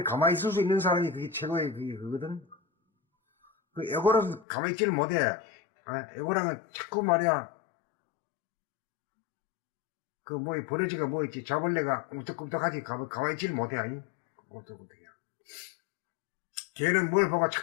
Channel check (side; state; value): right; drops out; at 4.5 s